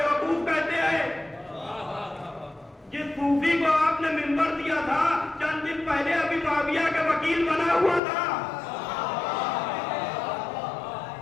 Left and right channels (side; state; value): right; drops out; at 8.0 s